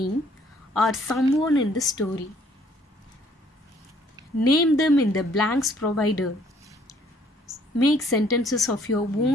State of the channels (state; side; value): normal; both; correlation 0.62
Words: or someone in the story. Name them in the blanks provided. Make sentences of your